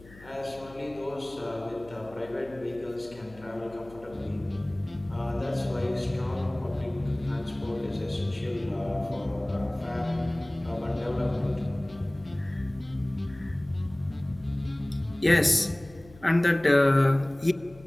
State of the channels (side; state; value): left; noise; hum, 21 dB below the sound